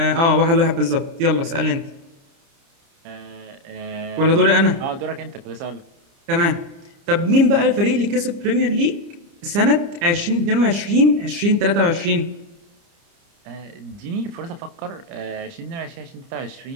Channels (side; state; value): left; late; 30 ms